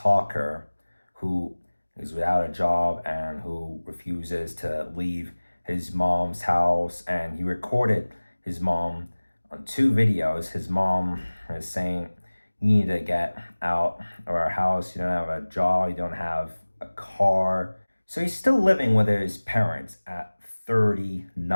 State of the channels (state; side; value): inverted; both; correlation -1.00